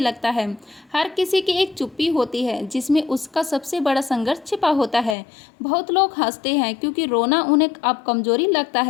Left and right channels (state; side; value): drops out; right; at 5.2 s